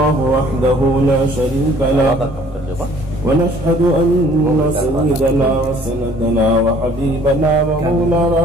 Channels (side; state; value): both; normal; correlation 0.56